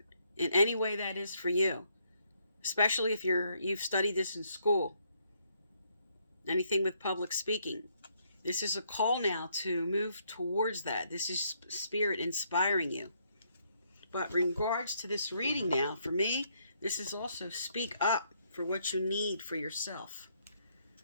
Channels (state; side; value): inverted; both; correlation -0.72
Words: in any way that is for you, especially if you've studied this in school. Anything with public speaking. This is a call now to move towards that. This is Spirit inspiring you. But in regards to this reading now, for me, this is also speak up for what you need for yourself.